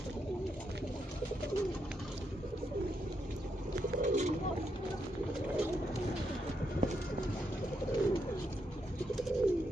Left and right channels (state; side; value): normal; both; correlation 0.81